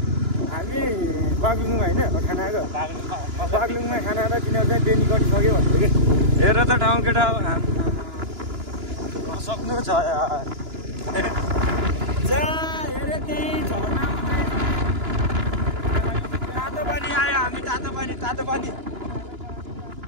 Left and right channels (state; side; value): late; left; 2.9 ms